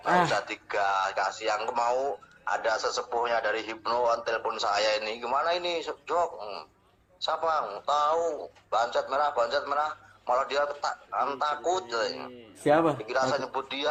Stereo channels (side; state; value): both; identical; correlation 1.00